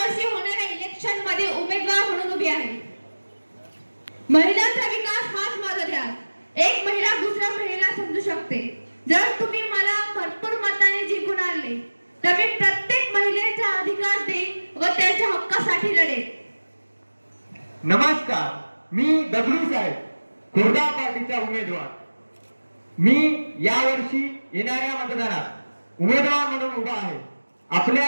होणाऱ्या इलेक्शन मध्ये उमेदवार म्हणून उभी आहे. महिलांचा विकास हाच माझा ध्यास. एक महिला दुसऱ्या महिलेला समजू शकते. जर तुम्ही मला भरपूर मताने जिंकून आणले तर मी प्रत्येक महिलेचा अधिकार देईन व त्यांच्या हक्कासाठी लढेन. नमस्कार, मी दगडू साहेब, खुर्दा पार्टीचा उमेदवार. मी यावर्षी येणाऱ्या मतदानात उमेदवार म्हणून उभा आहे. आपल्या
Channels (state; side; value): inverted; both; correlation -1.00